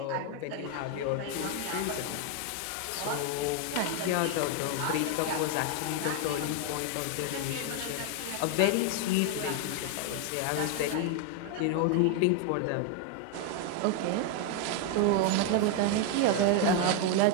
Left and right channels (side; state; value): both; different; correlation 0.01